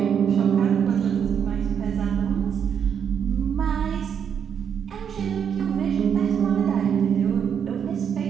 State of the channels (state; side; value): quieter; left; 7.8 dB